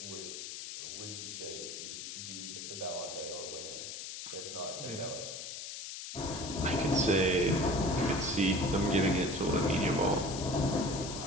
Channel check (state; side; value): noise; left; hiss, 8 dB below the sound